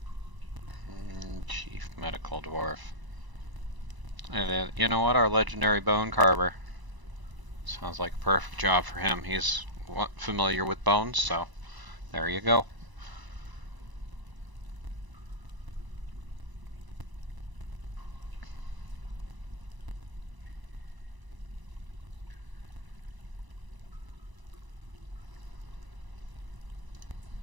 Chief Medical Dwarf. And you know what? Our legendary bone carver. Sounds like a perfect job for him. He's familiar with bones, so there you go.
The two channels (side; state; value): left; late; 1.0 ms